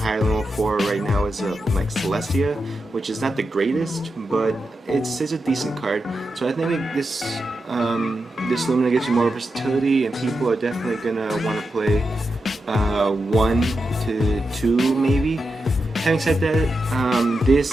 than level 4 right now is like Celestia, which is not the greatest, but it's a decent card. So I think this this Lumina gives you more versatility, and people are definitely gonna want to play 1 to 2 maybe. Having said that,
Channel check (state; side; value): normal; both; correlation 0.88